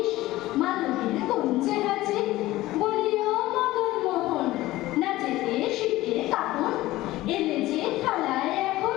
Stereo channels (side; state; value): right; quieter; 17.1 dB